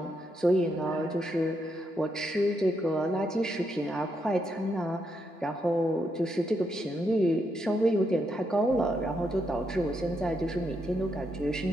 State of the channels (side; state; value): both; normal; correlation 0.80